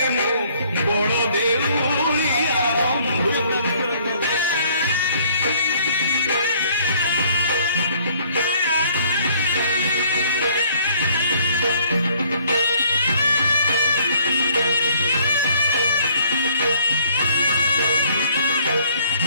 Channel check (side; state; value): both; inverted; correlation -0.60